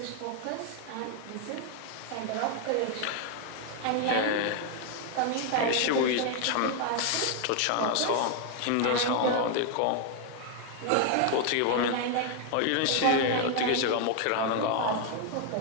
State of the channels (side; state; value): both; different; correlation 0.00